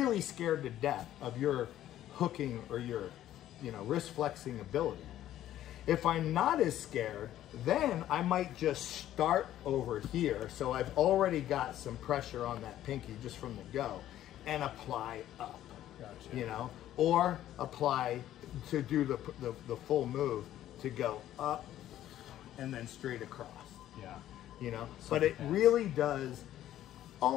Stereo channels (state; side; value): quieter; right; 12.6 dB